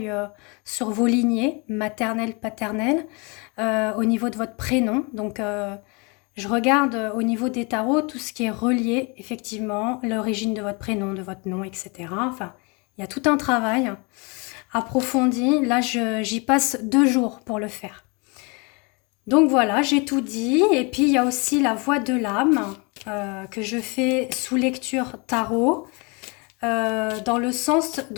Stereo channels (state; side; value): quieter; right; 30.4 dB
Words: sur vos lignées, maternelles, paternelles, au niveau de votre prénom. Donc, je regarde au niveau des tarots tout ce qui est relié, effectivement, l'origine de votre prénom, de votre nom, etc. Enfin, il y a tout un travail approfondi. Là, j'y passe 2 jours pour le faire. Donc voilà, j'ai tout dit. Et puis, il y a aussi la voix de l'âme que je fais sous lecture tarot, dans le sens